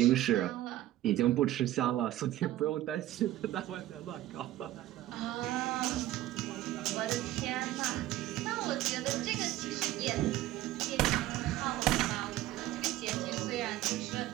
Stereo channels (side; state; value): left; quieter; 14.8 dB